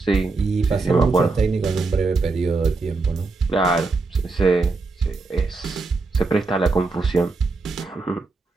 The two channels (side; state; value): left; quieter; 3.8 dB